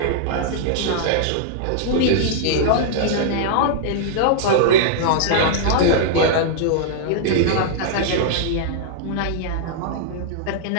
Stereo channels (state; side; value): different; both; correlation -0.01